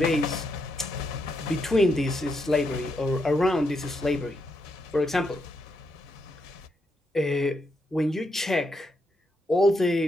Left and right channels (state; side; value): normal; both; correlation 0.81